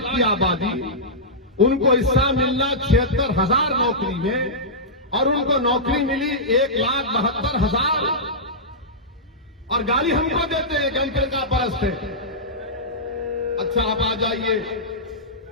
की आबादी, उनको हिस्सा मिलना 76,000 नौकरी में और उनको नौकरी मिली 1,72,000 और गाली हमको देते हैं कि हम फिरका परस्त है। अच्छा आप आ जाइए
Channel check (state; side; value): normal; both; correlation -0.13